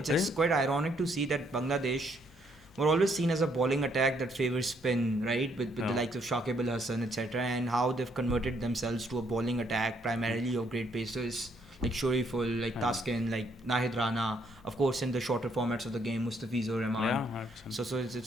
quite ironic to see that Bangladesh were always seen as a bowling attack that favors spin, right, with the likes of Shakib Al Hasan, etc., and how they've converted themselves to a bowling attack primarily of great pacers like Shoriful, like Taskin, like Nahid Rana, of course in the shorter formats of the game, Mustafizur Rahman. So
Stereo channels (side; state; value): both; normal; correlation 0.70